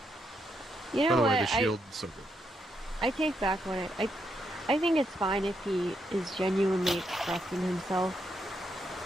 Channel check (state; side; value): normal; both; correlation 0.79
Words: You By know the what? way, the Shield is so good. I take back what I think it's fine if he is genuinely expressing himself,